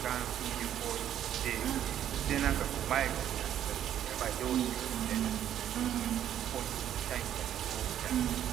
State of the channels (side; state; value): left; quieter; 10.6 dB